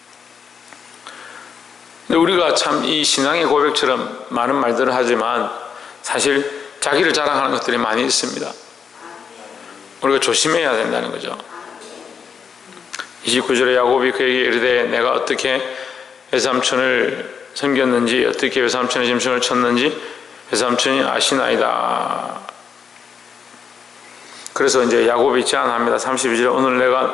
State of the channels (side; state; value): right; quieter; 6.5 dB